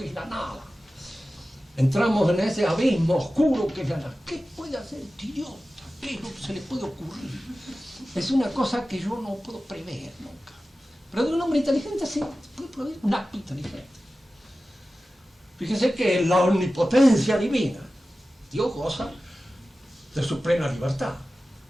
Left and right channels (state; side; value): normal; both; correlation 0.95